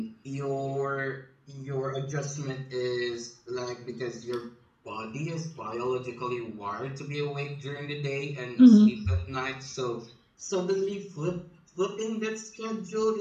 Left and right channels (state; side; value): identical; both; correlation 1.00